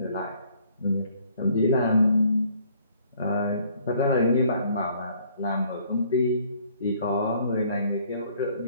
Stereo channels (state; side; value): inverted; both; correlation -0.61